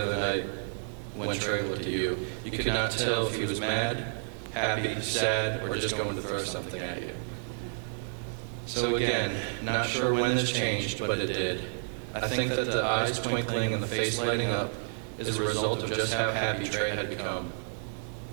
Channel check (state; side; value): silent; left; 55 dB below the other